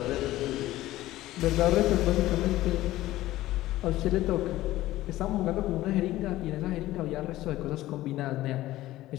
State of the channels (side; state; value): right; quieter; 15.9 dB